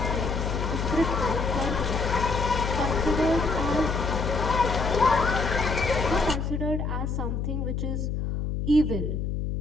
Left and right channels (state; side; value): noise; left; hum, 2 dB below the sound